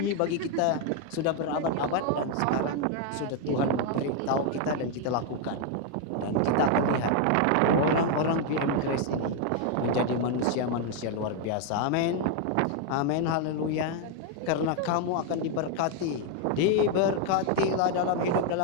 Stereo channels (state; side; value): different; both; correlation 0.01